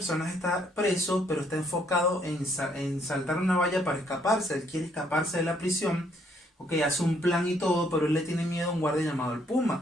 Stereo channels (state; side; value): normal; both; correlation 0.68